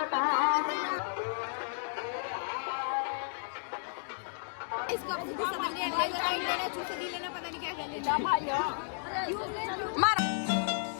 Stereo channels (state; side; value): silent; right; digital silence